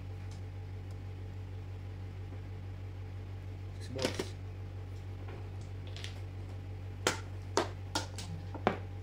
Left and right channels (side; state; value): both; identical; correlation 1.00